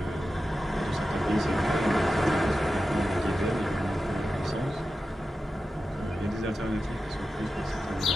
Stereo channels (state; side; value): normal; both; correlation 0.92